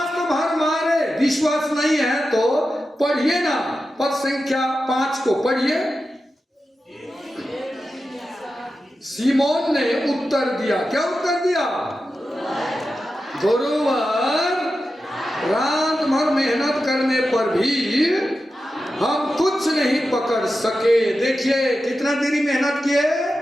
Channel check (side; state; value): both; normal; correlation 0.91